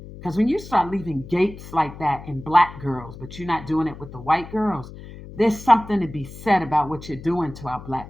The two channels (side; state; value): left; noise; hum, 15 dB below the sound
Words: Because when you start leaving gapes like that in Black girls, but you're not doing it with the white girls, there's something to be said about what you're doing to our